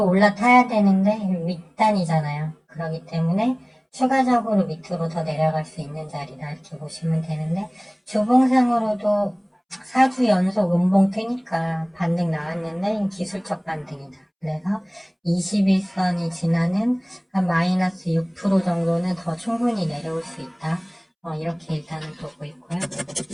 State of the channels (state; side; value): identical; both; correlation 1.00